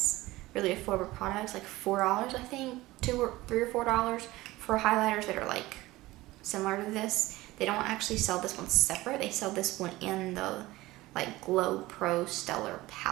really affordable products, like $4, I think, $3 or $4 for highlighters that are like similar to this, they don't actually sell this one separate. They sell this one in the like Glow Pro Stellar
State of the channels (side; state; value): left; quieter; 18.6 dB